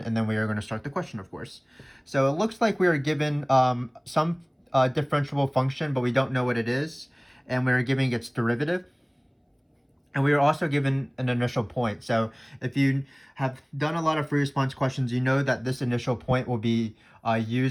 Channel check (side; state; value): both; identical; correlation 1.00